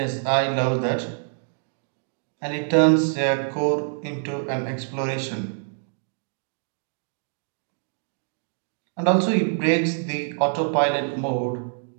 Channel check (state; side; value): silent; left; digital silence